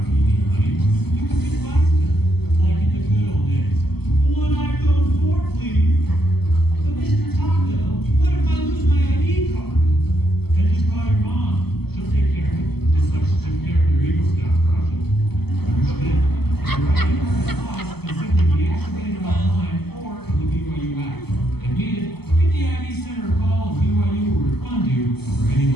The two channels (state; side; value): late; right; 0.97 ms